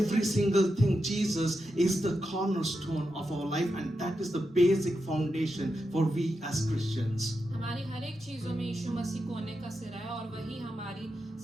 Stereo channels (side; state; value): both; normal; correlation 0.87